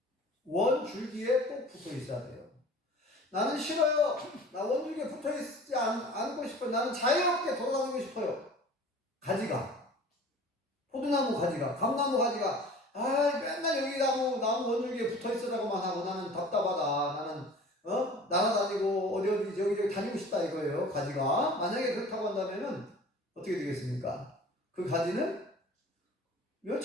원 줄기에 꼭 붙어 있어야 돼요. 나는 싫어요. 나 원줄기에 붙어 있지 않고 싶어요. 나는 자유롭게 돌아다니고 싶어요. 포도나무 가지가, 감나무 가지가, 맨날 여기 나무 원줄기에 붙어 있으라고만 하고 나는 답답하다. 나는, 날아다니고 어디 여기 다니고 싶다 이거예요. 가지가. 만약에 그렇다고 한다면은 어떻게 되겠습니까? 그 가지는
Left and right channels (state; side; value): normal; both; correlation 0.44